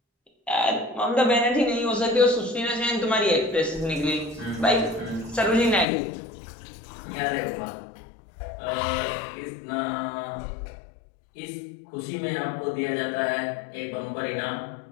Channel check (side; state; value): right; drops out; at 5.9 s